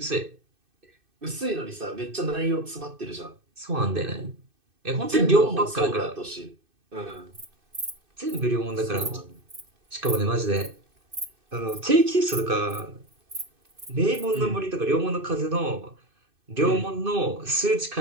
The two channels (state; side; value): late; left; 2.6 ms